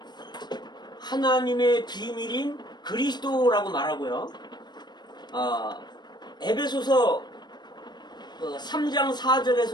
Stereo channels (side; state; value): right; late; 0.21 ms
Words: 하나님의 비밀인 그리스도라고 말하고요. 에베소서 3장